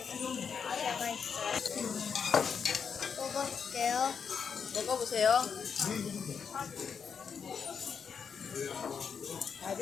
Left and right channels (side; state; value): right; quieter; 6.6 dB